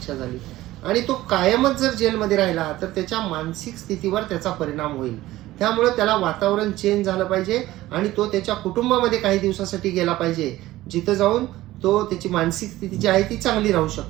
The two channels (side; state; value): left; quieter; 16.4 dB